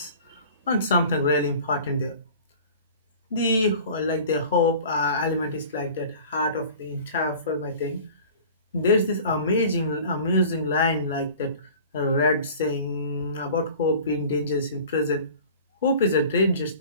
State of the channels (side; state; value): both; inverted; correlation -0.43